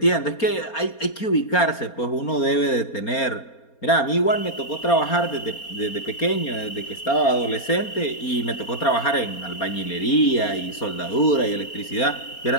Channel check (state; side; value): late; right; 4.3 ms